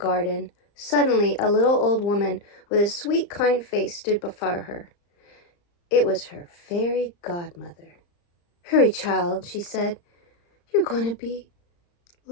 Suddenly, a little old woman with a sweet, kind face stood before her. It was her fairy godmother. Hurry, child, she said. You're going to be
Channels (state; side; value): late; right; 35 ms